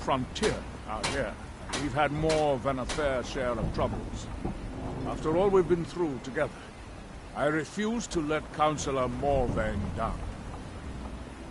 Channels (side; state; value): both; identical; correlation 1.00